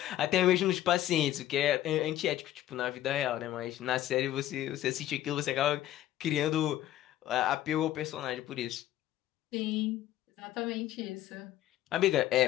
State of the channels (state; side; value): quieter; right; 13.2 dB